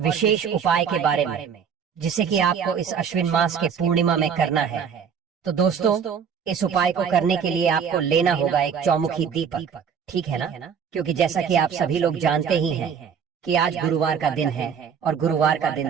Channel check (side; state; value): left; quieter; 7.1 dB